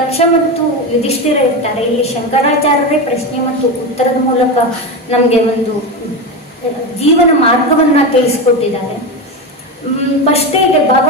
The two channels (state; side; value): normal; both; correlation 0.17